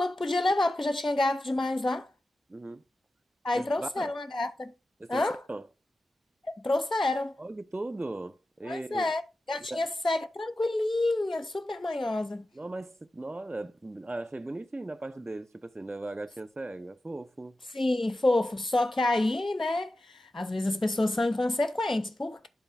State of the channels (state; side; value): normal; both; correlation 0.92